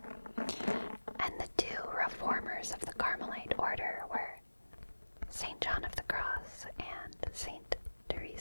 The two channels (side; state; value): both; inverted; correlation -1.00